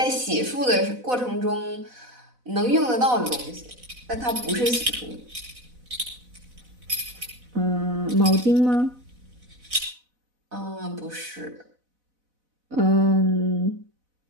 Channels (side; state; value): left; late; 4.0 ms